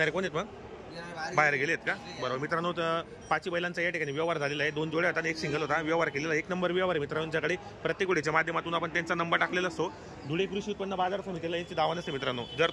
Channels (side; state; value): both; identical; correlation 1.00